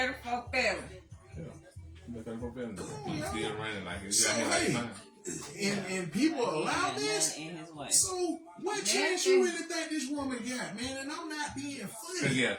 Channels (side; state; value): both; identical; correlation 1.00